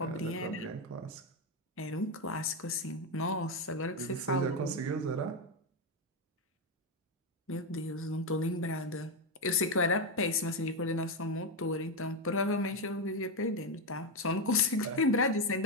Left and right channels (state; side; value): normal; both; correlation 0.08